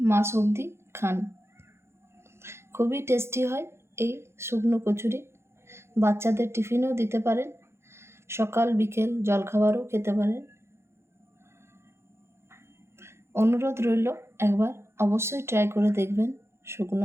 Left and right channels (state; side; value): late; left; 0.12 ms